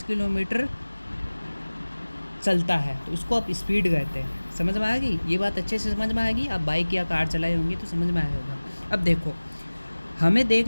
किलोमीटर चलता है, तो इसको आप स्पीड कहते हैं। समझ में आ गई ये बात? अच्छे से समझ में आएगी। आप बाइक या कार चलाए होंगे तो समझ में आया होगा। अब देखो,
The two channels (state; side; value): inverted; both; correlation -1.00